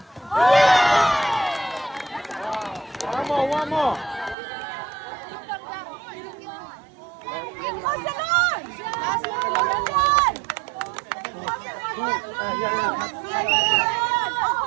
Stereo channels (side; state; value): left; drops out; at 4.4 s